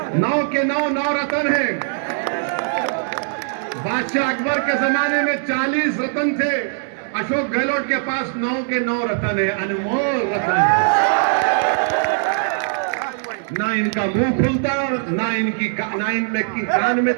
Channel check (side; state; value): left; silent; digital silence